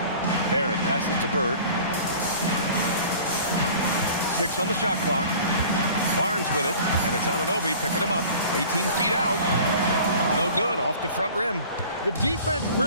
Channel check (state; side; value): inverted; both; correlation -0.45